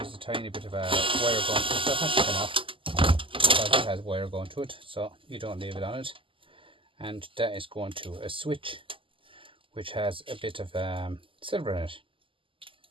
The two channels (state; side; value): late; left; 0.25 ms